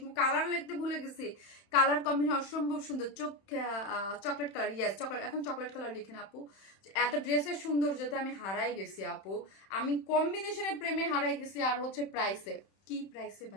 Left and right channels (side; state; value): right; late; 31 ms